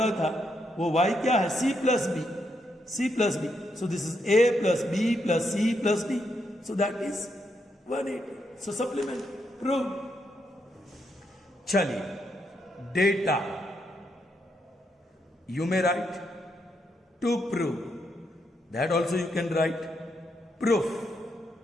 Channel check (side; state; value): both; normal; correlation 0.79